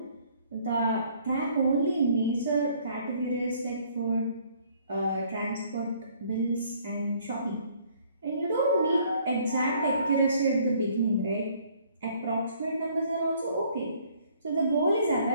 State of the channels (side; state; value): both; inverted; correlation -0.61